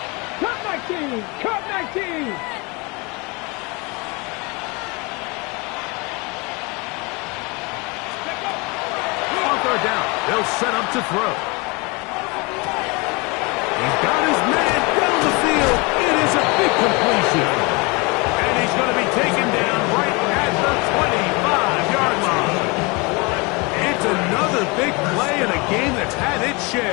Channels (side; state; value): right; quieter; 27.9 dB